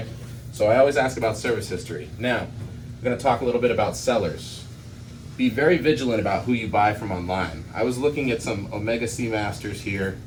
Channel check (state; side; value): identical; both; correlation 1.00